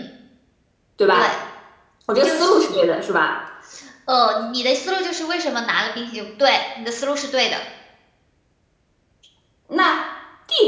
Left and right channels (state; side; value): identical; both; correlation 1.00